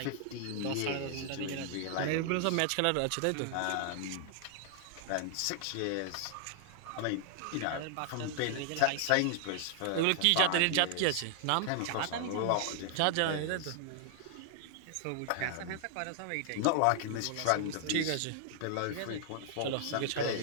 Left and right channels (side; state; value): both; different; correlation 0.00